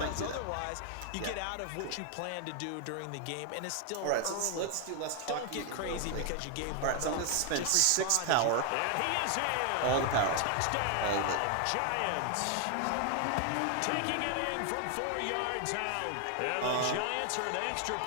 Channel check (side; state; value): both; different; correlation 0.00